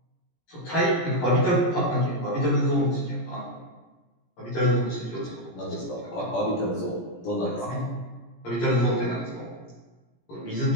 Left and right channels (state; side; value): late; right; 17 ms